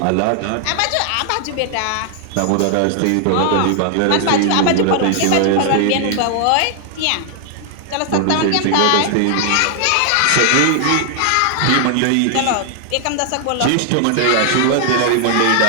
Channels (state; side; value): different; both; correlation 0.00